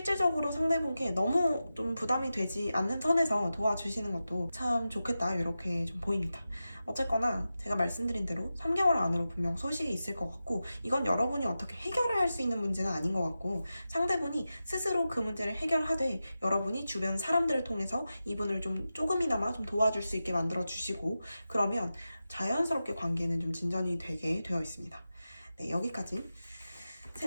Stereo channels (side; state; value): both; inverted; correlation -0.92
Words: 상대분께 너무 좀 부담이 되지 않는 선에서 도와주시는 것도 것도 참 좋겠다 이렇게 좀 보입니다. 어쨌거나 제가 말씀드린 대로 3개월 안으로 분명 소식이 있을 것 같고 이건 여러분이 어떻게 해결을 할 수 있는 문제는 아닌 것 같고 상대분이 스스로 그 문제를 해결하되 여러분이 주변 사람들을 통해서 이분을 좀 조금이나마 좀 도와줄 수 있게 만들어 주시고 그러면 자연스럽게 관계는 좀 진전이 되게 되어 있습니다. 네, 여기까지